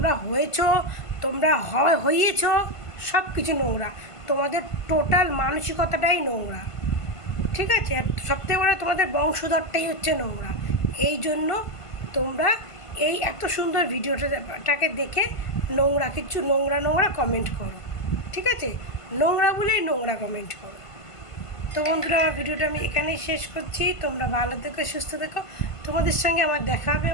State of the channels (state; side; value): late; right; 1.5 ms